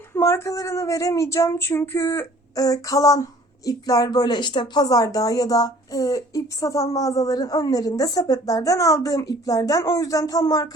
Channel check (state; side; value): normal; both; correlation 0.52